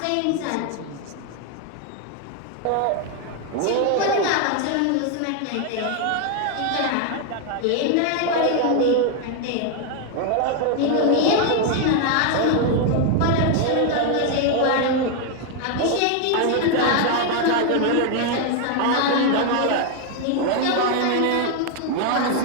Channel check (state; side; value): different; both; correlation 0.00